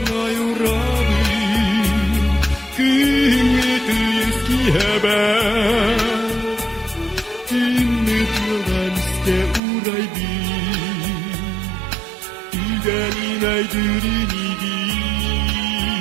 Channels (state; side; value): drops out; left; at 9.6 s